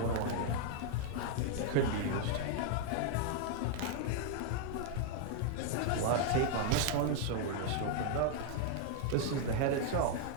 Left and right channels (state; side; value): different; both; correlation 0.00